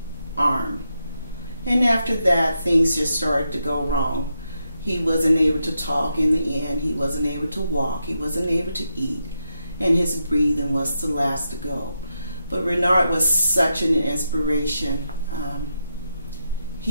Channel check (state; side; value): inverted; both; correlation -0.84